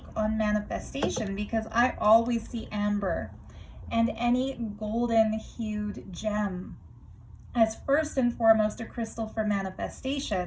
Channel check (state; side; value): identical; both; correlation 1.00